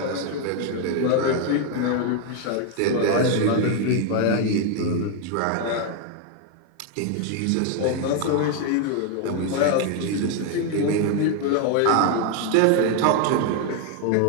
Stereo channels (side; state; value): both; different; correlation 0.01